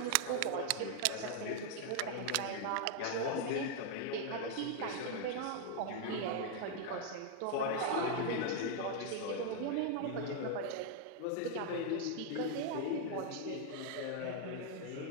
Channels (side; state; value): both; different; correlation 0.00